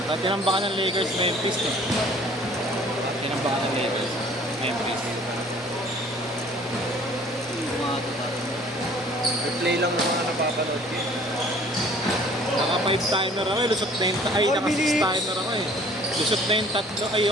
At tinambakan ng Lakers Memphis eh. Tinambakan ng Lakers Memphis. Replay lang yung mga napapanood ko. Naka 5 timer ako eh. Lusot na yung ay, Four naka 6 minutes. timer ako eh. Lusot na yung 3 ay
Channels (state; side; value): normal; both; correlation 0.53